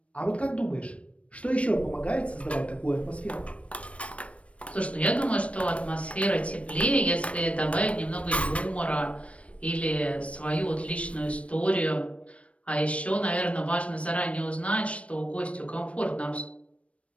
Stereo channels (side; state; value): right; late; 0.063 ms